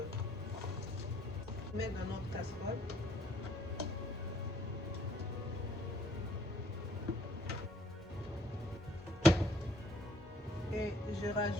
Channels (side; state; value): both; normal; correlation 0.63